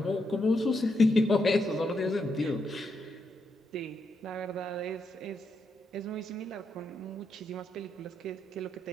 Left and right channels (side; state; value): both; normal; correlation 0.81